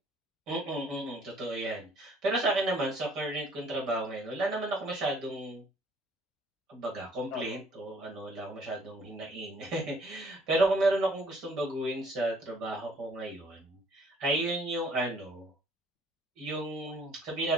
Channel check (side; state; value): both; normal; correlation 0.60